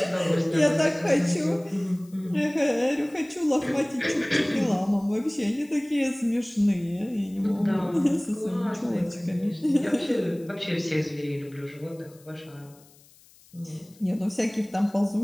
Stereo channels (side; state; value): left; noise; hiss, 27 dB below the sound